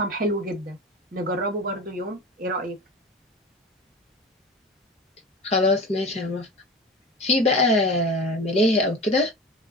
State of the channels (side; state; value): both; normal; correlation 0.32